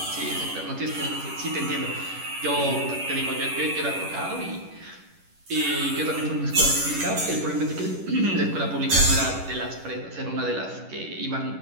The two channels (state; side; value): late; left; 11 ms